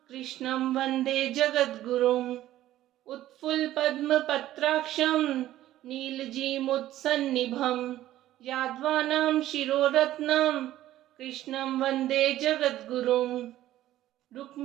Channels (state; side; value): quieter; left; 13.9 dB